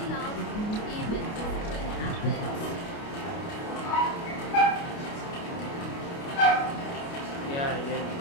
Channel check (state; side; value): late; right; 29 ms